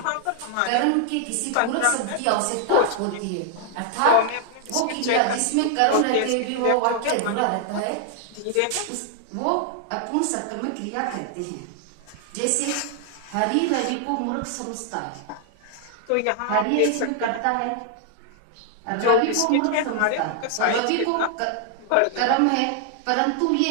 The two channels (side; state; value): both; different; correlation 0.00